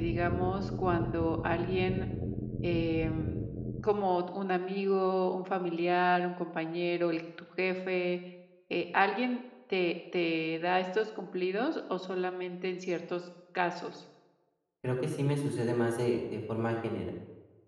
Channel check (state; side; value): identical; both; correlation 1.00